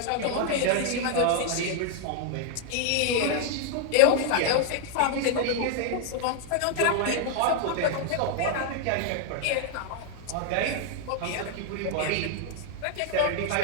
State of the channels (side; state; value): both; different; correlation 0.00